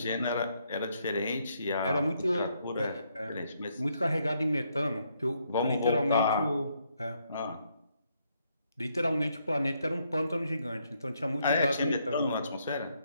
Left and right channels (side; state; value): both; inverted; correlation -0.74